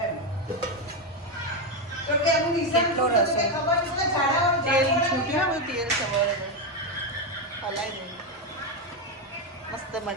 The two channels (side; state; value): both; normal; correlation 0.08